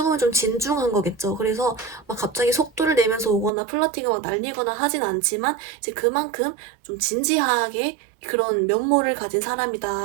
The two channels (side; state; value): left; drops out; at 3.5 s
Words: 보면 좀 진중한 거겠죠. 그래서 막 갑자기 속도를 내면서 오거나 플러팅을 막 날리거나 하진 않지만 이제 그만큼 좀 진지하게 그런 면모를 가진